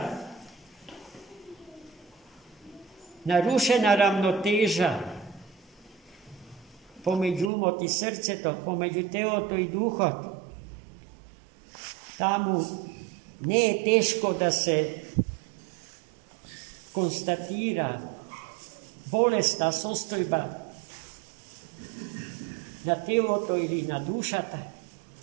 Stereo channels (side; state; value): left; drops out; at 7.5 s